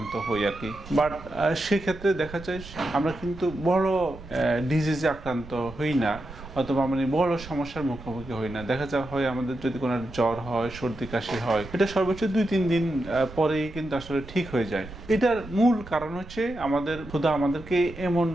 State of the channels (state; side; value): noise; right; rumble, 15 dB below the sound